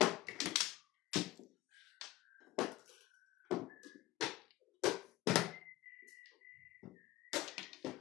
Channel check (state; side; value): quieter; right; 17.4 dB